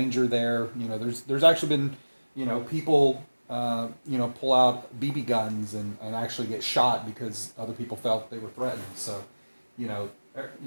there. You know, there's actually been, you know, people you know, pull out BB guns and actually get shot because other people felt they were threatened. So, you know,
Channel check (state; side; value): inverted; both; correlation -1.00